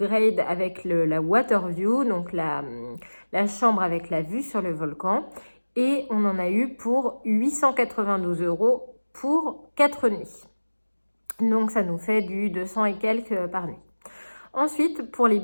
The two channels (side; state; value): both; inverted; correlation -1.00